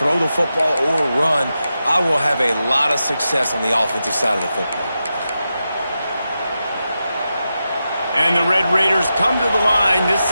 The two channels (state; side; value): inverted; both; correlation -0.89